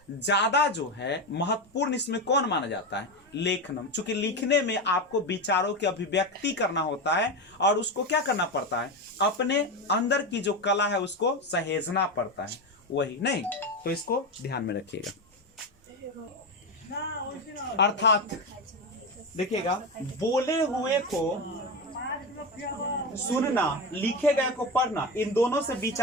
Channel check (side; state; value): both; normal; correlation 0.16